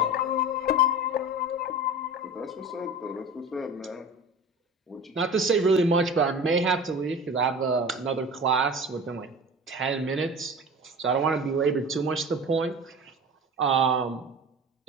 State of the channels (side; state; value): both; normal; correlation 0.35